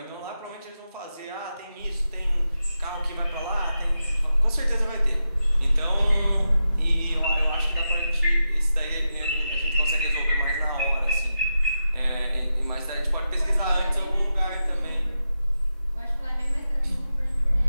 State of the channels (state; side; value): inverted; both; correlation -0.88